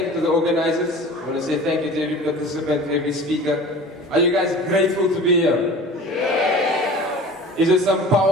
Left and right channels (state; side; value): normal; both; correlation 0.40